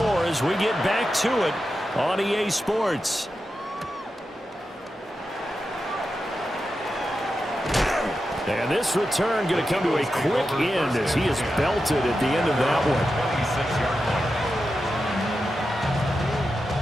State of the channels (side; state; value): both; normal; correlation 0.90